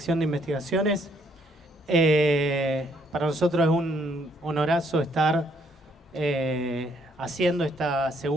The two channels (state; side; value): normal; both; correlation 0.68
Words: de Investigaciones. Para nosotros es un honorazo estar haciendo esta